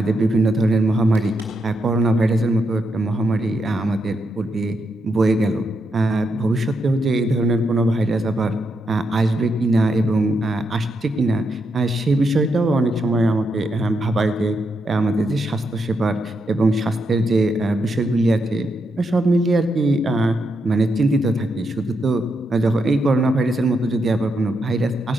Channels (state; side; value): normal; both; correlation 0.82